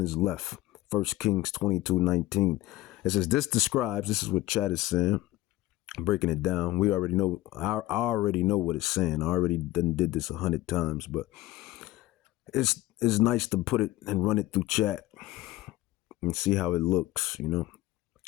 left. 1 Kings 22:19. It says, this is what Chat is saying. Breaking it down. We already know. I already know what it's saying. I already did this 100 times, but it's nice to put it and run it through Chat and see how it looks.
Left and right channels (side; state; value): right; quieter; 16.9 dB